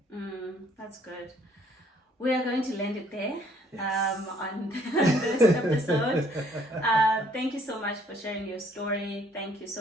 That's good. We are going to land it there on this episode. Thank you so much for sharing your story. Thank you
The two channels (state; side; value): normal; both; correlation 0.63